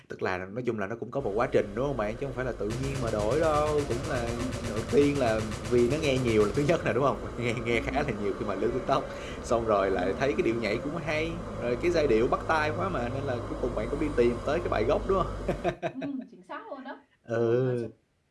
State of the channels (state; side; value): identical; both; correlation 1.00